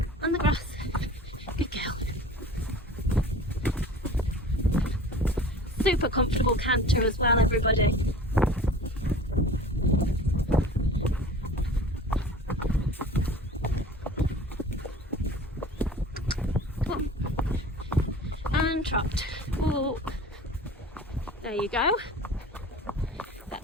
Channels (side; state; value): both; normal; correlation 0.42